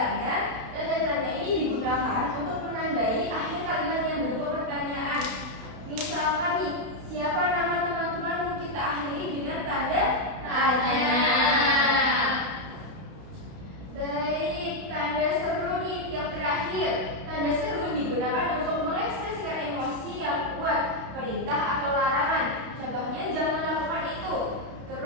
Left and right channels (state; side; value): late; left; 32 ms